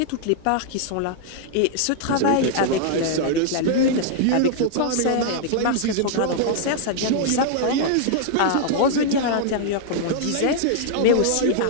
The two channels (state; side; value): different; both; correlation -0.01